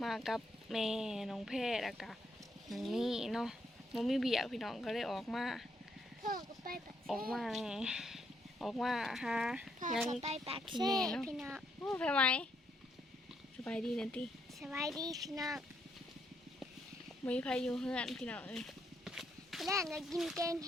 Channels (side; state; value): both; normal; correlation 0.75